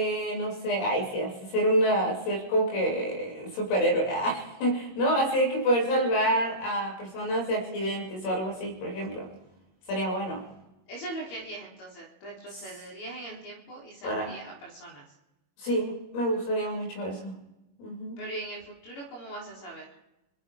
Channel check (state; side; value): late; right; 21 ms